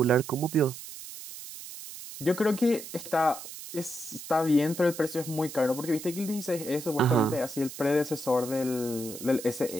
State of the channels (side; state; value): right; noise; hiss, 12 dB below the sound